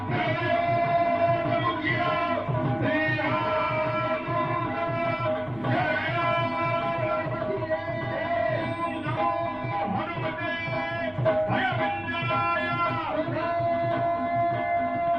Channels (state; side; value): noise; right; rumble, 23 dB below the sound